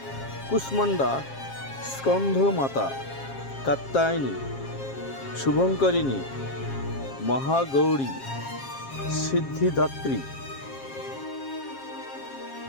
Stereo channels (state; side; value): late; right; 7.4 ms